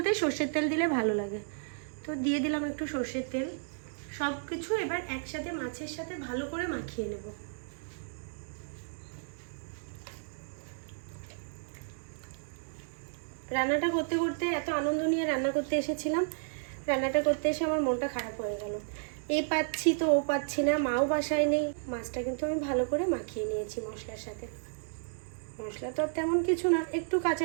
সর্ষের তেল দিলে ভালো লাগে, তো দিয়ে দিলাম একটু সর্ষের তেল। সব কিছু এবার একসাথে মাছের সাথে ভালো করে মাখিয়ে নেব। রান্নাটা করতে করতে এত আনন্দ নিয়ে রান্না করতে এসেছিলাম, রান্নাটা করতে এসে আমার মনটা খারাপ হয়ে গেল। এ পাচ্ছি তো ও পাচ্ছি না, মাও বাসায় নেই। মাছটা কিন্তু আমি ভালো করে মাখিয়ে নিয়েছি মশলার সাথে। মশলা তো তেমন কিছু না, একটু কাঁচা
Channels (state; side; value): silent; left; digital silence